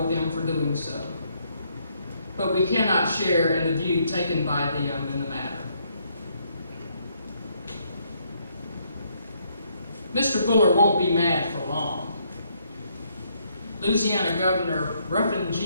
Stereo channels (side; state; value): both; inverted; correlation -0.72